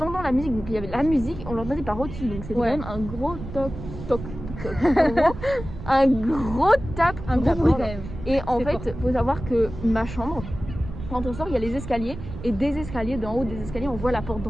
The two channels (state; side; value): noise; right; rumble, 10 dB below the sound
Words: la musique, donc il y avait la musique, on l'entendait par au-dessus, donc c'était Ouais. quand même un gros toc. En gros, un gros tape. Un sur gros la bruit porte. quand même. Et en C'était fait, faut savoir que ma chambre, quand on sort, il y a les escaliers, et des escaliers, d'en haut des escaliers, on voit la porte